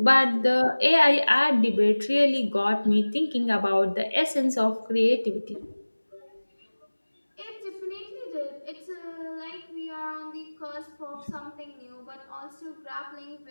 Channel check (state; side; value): inverted; both; correlation -1.00